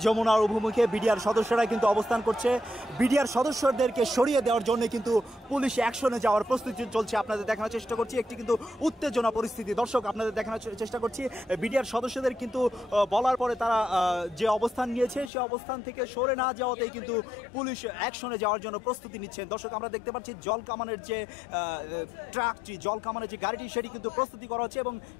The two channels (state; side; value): drops out; right; at 15.3 s